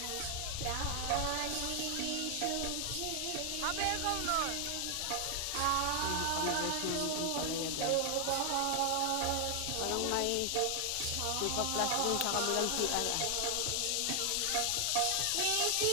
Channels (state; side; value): different; both; correlation 0.00